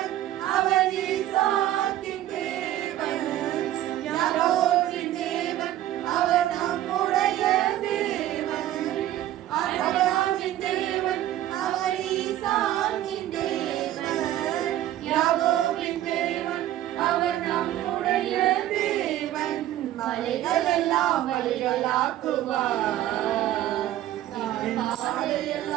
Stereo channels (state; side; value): quieter; left; 13.3 dB